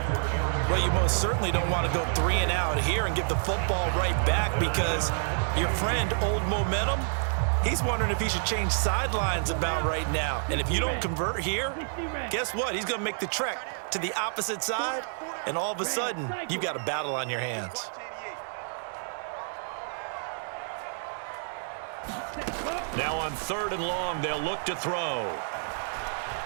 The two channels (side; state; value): left; silent; digital silence